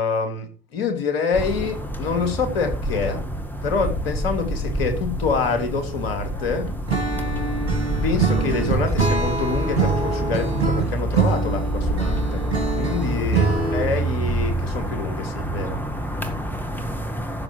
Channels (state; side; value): normal; both; correlation 0.43